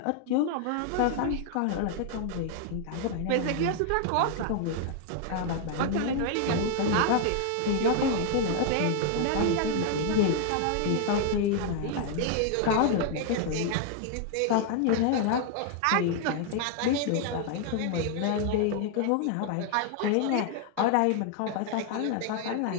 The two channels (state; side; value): different; both; correlation 0.00